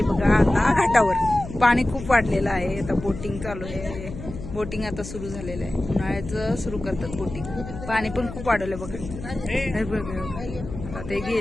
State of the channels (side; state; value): left; noise; hum, 11 dB below the sound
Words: बघा आता घाटावर. पाणी खूप वाढलेलं आहे. आता बोटिंग चालू आहे. बोटिंग आता सुरू झालेलं आहे. उन्हाळ्याचं सुरू करतात बोटिंग. पाणी पण खूप वाढवलं बघा. आता ते